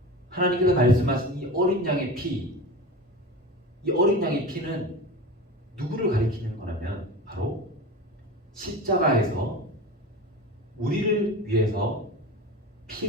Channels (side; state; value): both; normal; correlation 0.30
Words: 하나님께서 말씀하신 이 어린 양의 피, 이 어린 양의 피는 누구를 가리키는 거냐면 바로 십자가에서 우리를 위해서